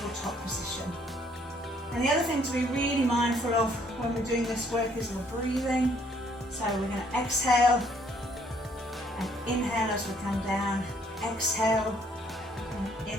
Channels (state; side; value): normal; both; correlation 0.65